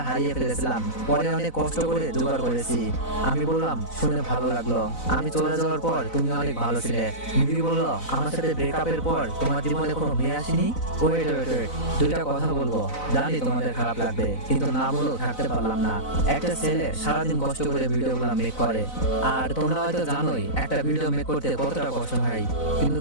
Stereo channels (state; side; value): late; right; 4.0 ms